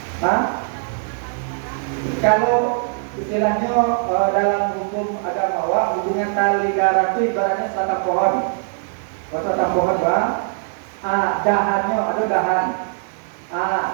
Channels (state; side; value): silent; left; 65 dB below the other